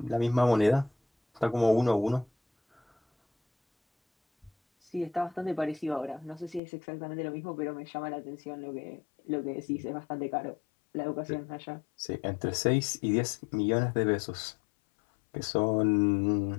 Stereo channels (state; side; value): drops out; right; at 6.6 s